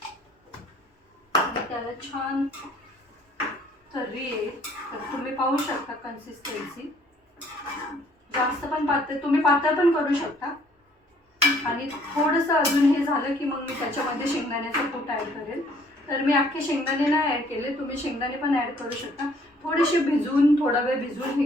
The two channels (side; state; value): both; normal; correlation 0.60